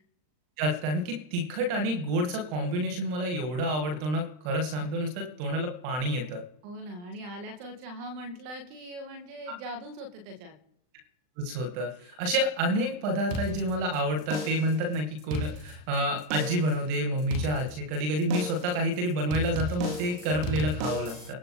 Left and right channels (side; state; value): left; late; 39 ms